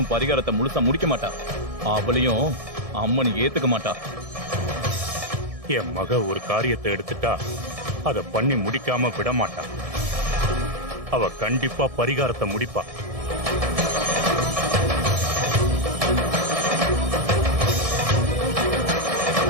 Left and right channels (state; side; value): late; left; 1.7 ms